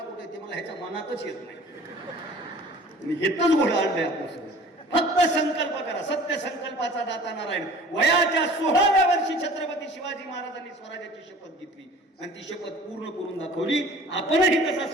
कुठे? ते मला ह्याच्या मनातच येत नाही. हेच घोडं आणलंय आपल्यासोबत. फक्त संकल्प करा. सत्य संकल्पाचा दाता नारायण. वयाच्या 16व्या वर्षी छत्रपती शिवाजी महाराजांनी स्वराज्याची शपथ घेतली आणि ती शपथ पूर्ण करून दाखवली. आपणही तसा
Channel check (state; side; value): normal; both; correlation 0.46